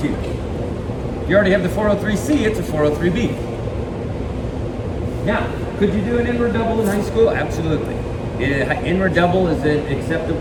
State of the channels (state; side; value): identical; both; correlation 1.00